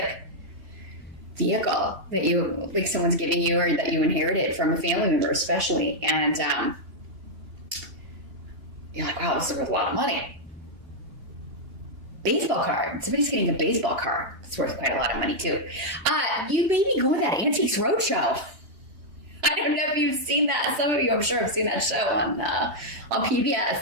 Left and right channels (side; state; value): left; late; 2.9 ms